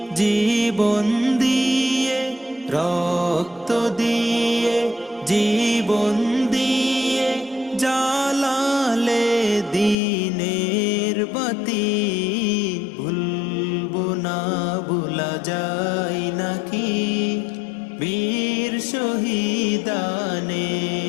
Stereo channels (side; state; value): right; drops out; at 10.0 s